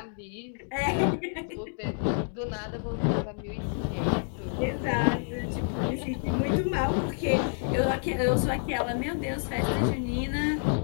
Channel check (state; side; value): silent; right; 56 dB below the other